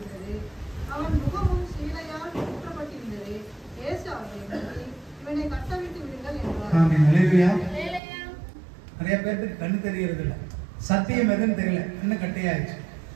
அவன் முகமும் சீலையால் சுற்றப்பட்டிருந்தது. இயேசு அவர்களை நோக்கி, இவனை கட்டவிட்டு விடுங்கள் என்றார். ஆமென். அல்லேலூயா. நிறைய பேருக்கு கண்ணு தெரியறது இல்ல, சத்தியம் எதுன்னு தெரியல, இன்னும் கட்டையாயிடுச்சு.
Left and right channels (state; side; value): drops out; left; at 8.0 s